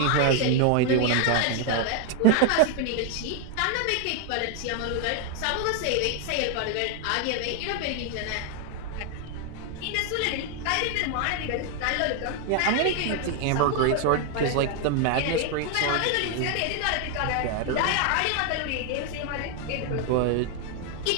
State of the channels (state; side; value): different; both; correlation 0.00